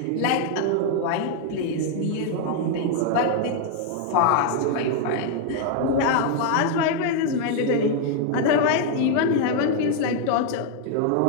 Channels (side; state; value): both; different; correlation 0.00